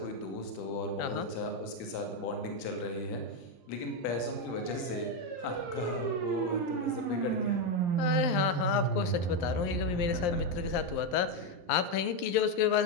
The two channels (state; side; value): late; right; 11 ms